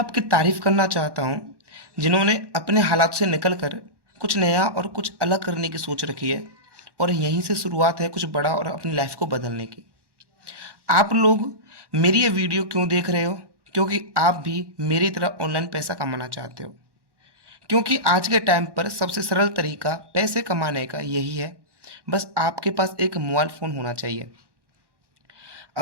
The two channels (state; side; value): late; left; 1.1 ms